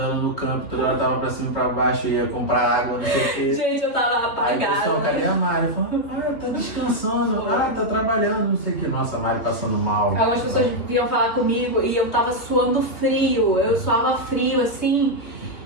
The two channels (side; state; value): right; late; 2.9 ms